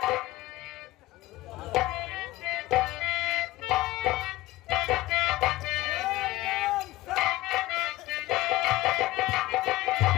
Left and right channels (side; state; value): right; quieter; 17.6 dB